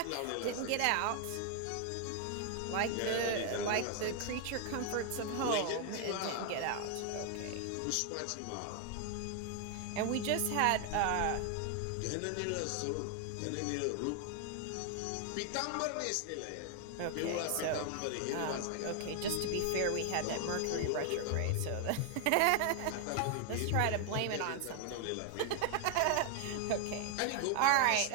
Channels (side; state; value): both; different; correlation 0.00